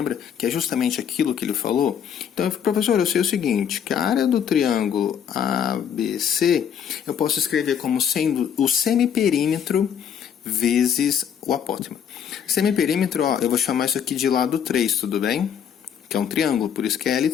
Que é justamente aquilo que ele falou. Então, professor, eu sei o seguinte, que a área do triângulo ABC, eu posso escrever como sendo o semiperímetro vezes o apótema. Semiperímetro, ó, eu vou chamar isso aqui de lado 3, tudo bem? Que é um triângulo, por isso que é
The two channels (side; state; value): right; quieter; 8.3 dB